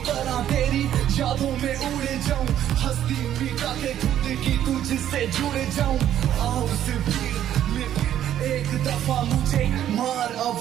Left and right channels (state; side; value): quieter; left; 11.1 dB